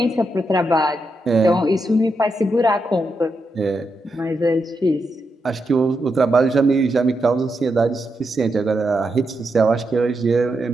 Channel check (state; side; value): normal; both; correlation 0.84